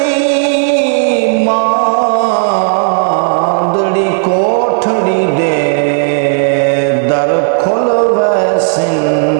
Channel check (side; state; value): left; silent; digital silence